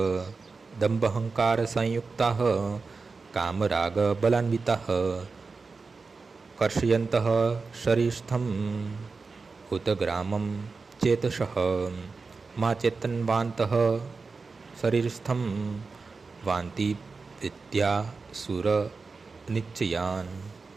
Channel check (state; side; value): quieter; left; 4.4 dB